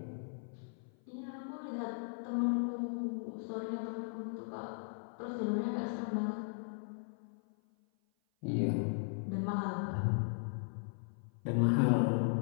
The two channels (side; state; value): right; silent; 53 dB below the other